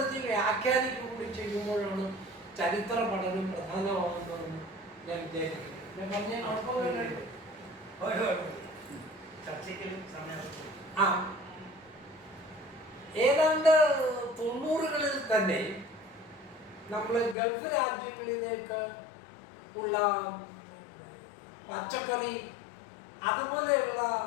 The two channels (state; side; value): drops out; right; at 17.4 s